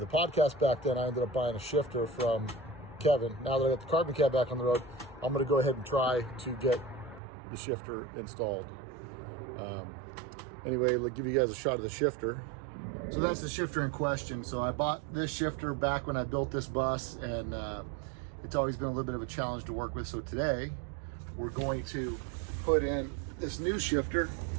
podcast back then, I ended up buying a shifter from Kevin. Now that I got the carbon cab back on the road, I'm going to go ahead and try to get the shifter installed. Anyway, let's give you guys a shot of the shifter. So that's the shifter in question. So I bought this shifter back when I built this bus, and it's always been a little bit of a challenge to work with. So today we're going to put in this new shifter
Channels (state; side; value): drops out; left; at 7.2 s